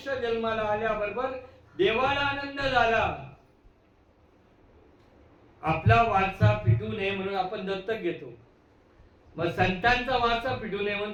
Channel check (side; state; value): both; identical; correlation 1.00